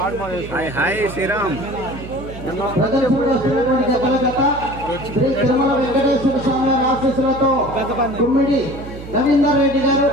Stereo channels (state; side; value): noise; right; hum, 13 dB below the sound